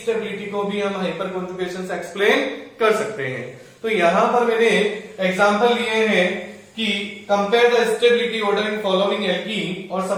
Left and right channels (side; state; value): both; identical; correlation 1.00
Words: को भी हम हाइपर कॉन्जुगेशन से एक्सप्लेन कर सकते हैं। तो यहां पर मैंने एग्जांपल लिए हैं कि compare the stability order in following alkene, और